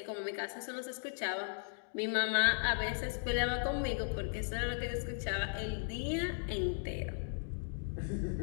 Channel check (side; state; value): right; silent; digital silence